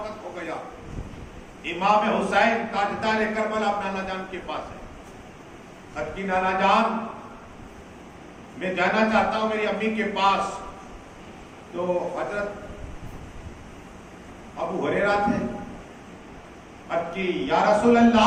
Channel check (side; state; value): both; identical; correlation 1.00